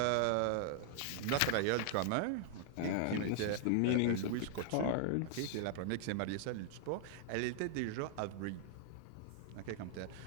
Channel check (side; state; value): both; different; correlation -0.01